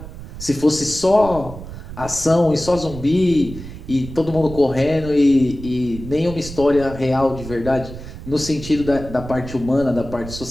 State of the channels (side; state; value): right; noise; rumble, 12 dB below the sound